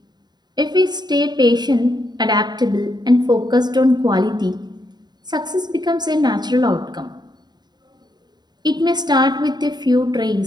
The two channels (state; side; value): late; left; 0.20 ms